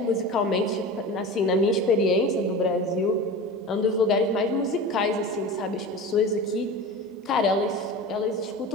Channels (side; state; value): both; normal; correlation 0.32